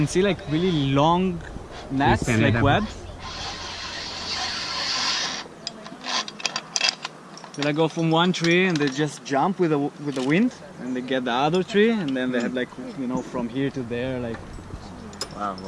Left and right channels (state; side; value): identical; both; correlation 1.00